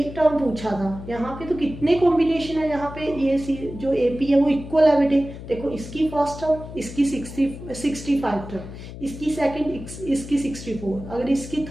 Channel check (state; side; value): noise; left; hum, 12 dB below the sound